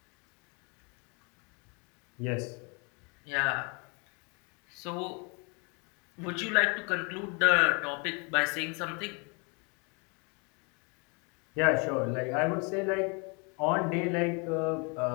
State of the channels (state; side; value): quieter; right; 32.7 dB